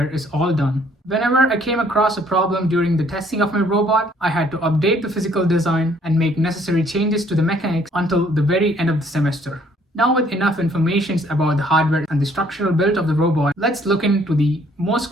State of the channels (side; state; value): both; normal; correlation 0.63